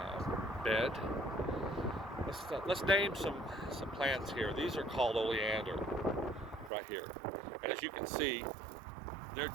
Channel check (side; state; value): left; drops out; at 6.7 s